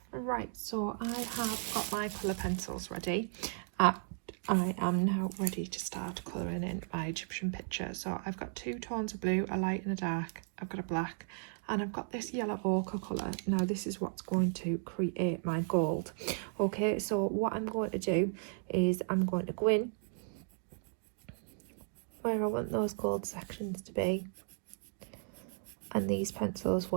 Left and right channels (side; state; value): left; silent; digital silence